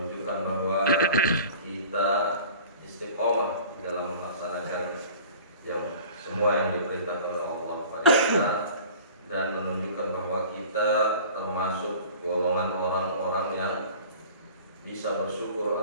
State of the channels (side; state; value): both; inverted; correlation -0.44